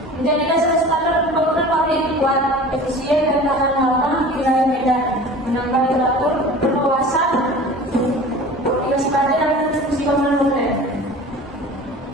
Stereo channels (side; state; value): both; normal; correlation 0.40